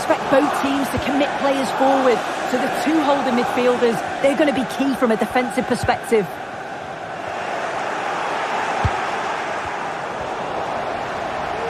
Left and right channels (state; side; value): identical; both; correlation 1.00